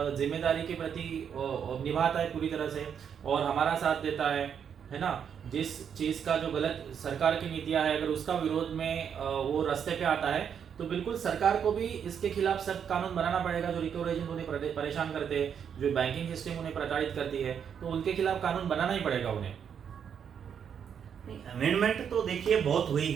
जिम्मेदारी के प्रति निभाता है पूरी तरह से और हमारा साथ देता है ना, जिस चीज़ का जो गलत सरकार की नीतियां है अगर उसका विरोध में वो रास्ते पे आता है, तो बिल्कुल सरकार को भी इसके खिलाफ सख्त कानून बनाना पड़ेगा। जो रिकवरी एजेंट उन्हें परेशान करते हैं, जो बैंकिंग सिस्टम उन्हें प्रताड़ित करती है, तो उनके खिलाफ कानून बनाना ही पड़ेगा उन्हें। अमेंडमेंट तो देखिए बहुत हुई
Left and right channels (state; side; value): quieter; left; 7.8 dB